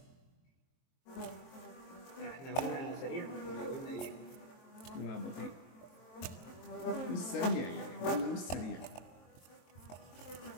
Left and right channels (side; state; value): right; late; 23 ms